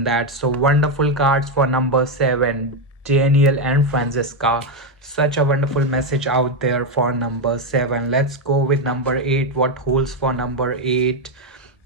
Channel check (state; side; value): normal; both; correlation 0.06